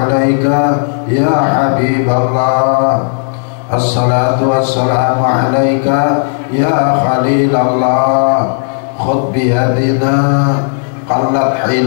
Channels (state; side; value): silent; right; digital silence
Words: ya Habiballah. Assalatu wassalamu alaika ya Khalilallah. Khudh biyadina qallat